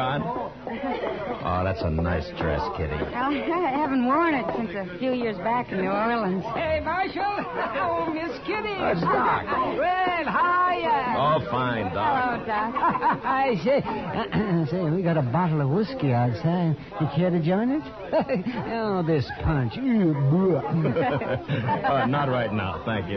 Oh, that's a nice dress, Kitty. Well, I haven't worn it since a few years back in New Orleans. Hey, Marshal. Oh, Miss Kitty. That's Doc. Well, hiya. Oh, fine, Doc. Hello, Doc. I say, we got a bottle of whiskey outside. You care to join us? Oh, this punch. Not right now, thank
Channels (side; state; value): both; identical; correlation 1.00